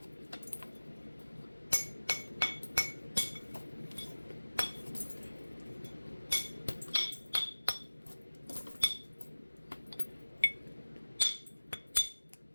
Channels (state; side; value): inverted; both; correlation -1.00